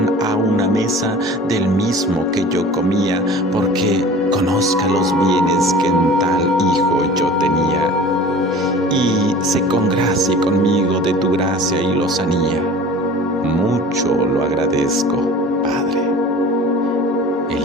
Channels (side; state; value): both; normal; correlation 0.42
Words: a una mesa del mismo que yo comía, porque conozca los bienes que en tal Hijo yo tenía, y se congracie conmigo de tu gracia y lozanía. Mucho lo agradezco, Padre.